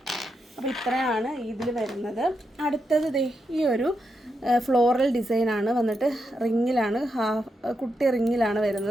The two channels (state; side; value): normal; both; correlation 0.84